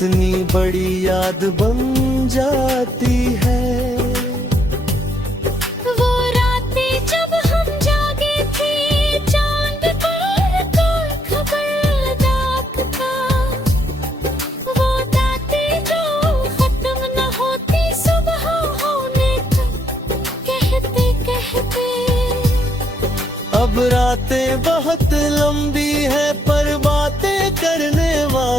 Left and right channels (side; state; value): both; normal; correlation 0.72